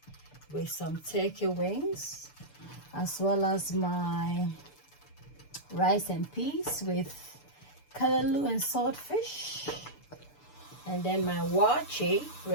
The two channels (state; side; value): late; right; 6.8 ms